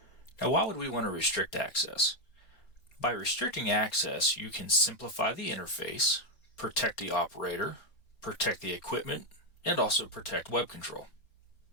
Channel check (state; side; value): late; right; 4.1 ms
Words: Now, why would we want to restrict access? By restricting access, you can simplify the interface, protect the operator, protect the equipment, and also protect web control.